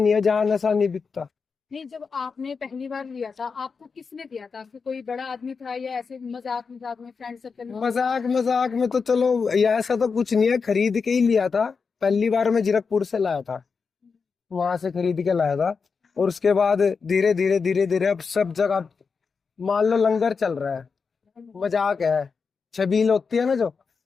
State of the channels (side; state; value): right; quieter; 5.2 dB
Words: है जहाँ नशा नहीं बिकता। नहीं, जब आपने पहली बार लिया था आपको किसने दिया था? आपको कोई बड़ा आदमी था या ऐसे मजाक मजाक में फ्रेंड सर्कल में? मजाक में तो चलो ऐसा तो कुछ नहीं है, खरीद के ही लिया था। पहली बार मैं जीरकपुर से लाया था, वहां से खरीद के लाया था। और उसके बाद धीरे धीरे अब सब जगह मान लो लंगर चल रहा है, मजाक है, छबील होती है ना जो,